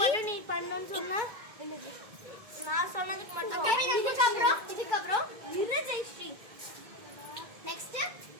நீ பண்ணணும்னு சொன்னா நான் சொன்னதுக்கு மட்டும். இதுக்கப்புறம் ஜெயஸ்ரீ நெக்ஸ்ட்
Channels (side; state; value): left; late; 2.2 ms